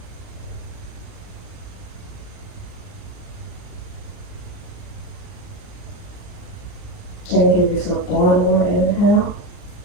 And give yourself one more inhale.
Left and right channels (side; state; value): right; late; 39 ms